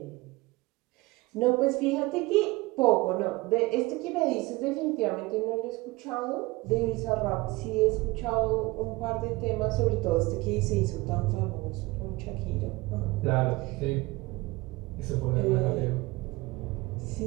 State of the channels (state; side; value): quieter; left; 22.2 dB